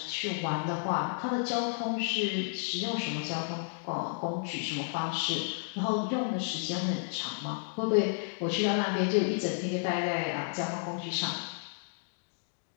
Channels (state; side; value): silent; right; digital silence